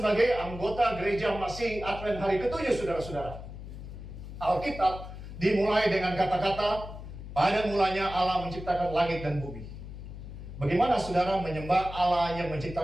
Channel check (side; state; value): left; noise; hum, 11 dB below the sound